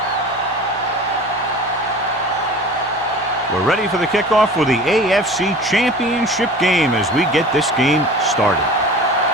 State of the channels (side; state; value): both; normal; correlation 0.40